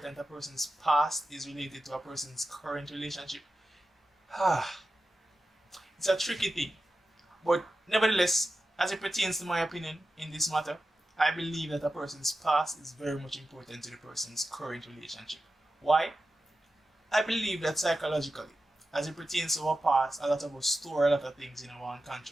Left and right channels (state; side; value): normal; both; correlation 0.92